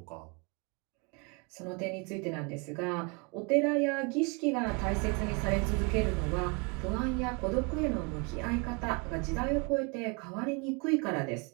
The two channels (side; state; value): left; quieter; 32.0 dB